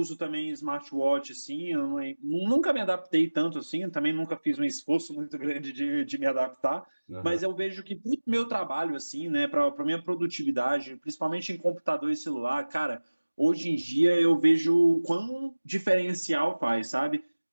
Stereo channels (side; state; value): both; inverted; correlation -1.00